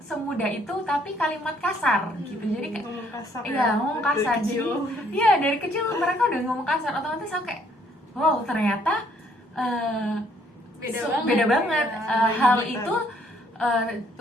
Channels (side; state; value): both; normal; correlation 0.66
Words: itu, tapi kalimat kasar gitu. Jadi kayak ngomong kasar iya, ya, ngomong dari kasar. kecil. Jadi iya, dari kecil mereka udah ngomong kasar, otomatis aku kayak wow, ternyata beda banget. Ya. Hal Gitu. itu